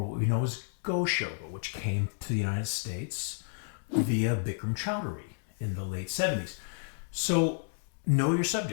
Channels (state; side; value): silent; right; digital silence